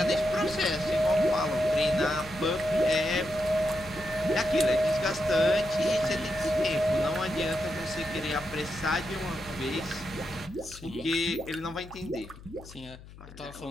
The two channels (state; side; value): noise; left; hum, 18 dB below the sound